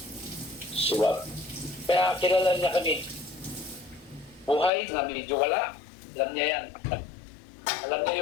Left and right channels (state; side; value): drops out; right; at 4.7 s